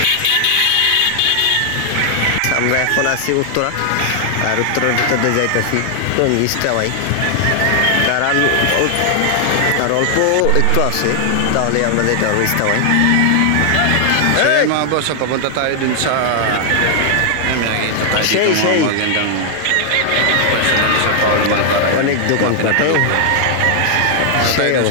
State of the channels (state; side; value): different; both; correlation 0.00